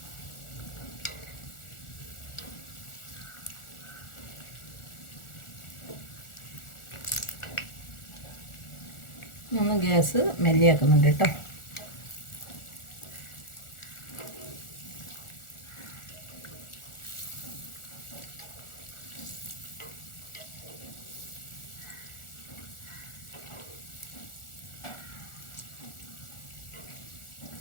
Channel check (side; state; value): right; late; 1.4 ms